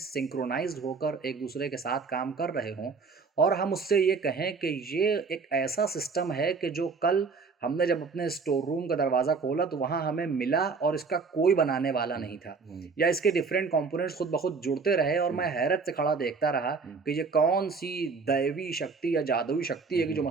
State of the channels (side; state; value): left; quieter; 4.7 dB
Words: सिंक्रोनाइज्ड होकर एक दूसरे के साथ काम कर रहे हों, और हम उससे ये कहें कि ये एक ऐसा सिस्टम है कि जो कल हमने जब अपने स्टोर रूम का दरवाज़ा खोला तो वहाँ हमें मिला और इसका कोई बनाने वाला नहीं था, या इसके डिफरेंट कंपोनेंट्स खुद ब खुद जुड़ते रहे और मैं हैरत से खड़ा देखता रहा कि ये कौन सी दैवी शक्ति या जादुई शक्ति है कि जो